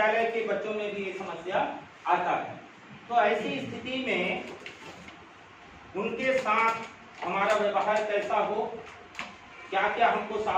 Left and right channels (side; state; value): both; identical; correlation 1.00